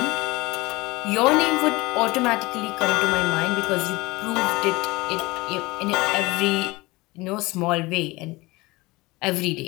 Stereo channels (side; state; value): right; quieter; 22.2 dB